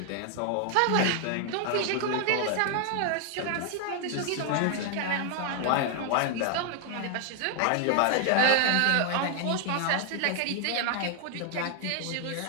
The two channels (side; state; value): both; different; correlation 0.00